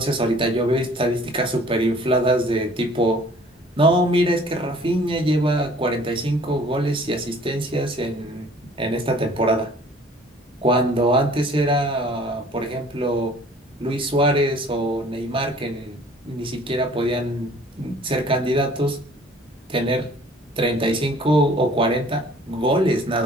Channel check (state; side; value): normal; both; correlation 0.52